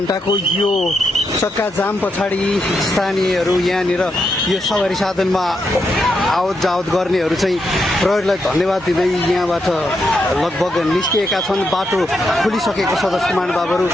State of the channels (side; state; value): both; normal; correlation 0.82